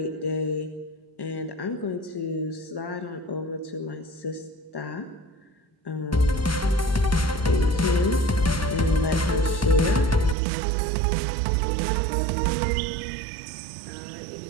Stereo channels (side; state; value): left; drops out; at 10.4 s